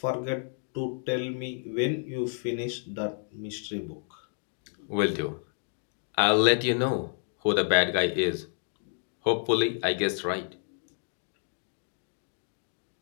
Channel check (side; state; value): right; silent; 58 dB below the other